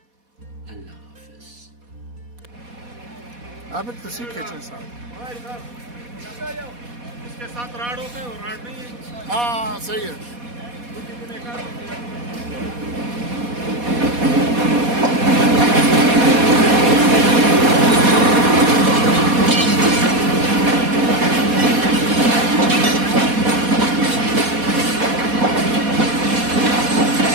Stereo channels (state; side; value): late; left; 4.2 ms